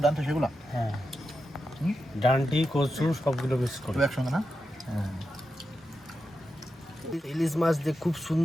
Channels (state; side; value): normal; both; correlation 0.89